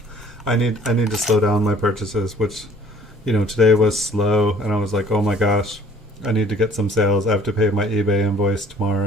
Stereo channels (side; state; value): both; normal; correlation 0.54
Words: I need to slow down my purchases, which, today was slow, and I was like, oh my gosh, I need to get some sales. I have to pay my eBay invoice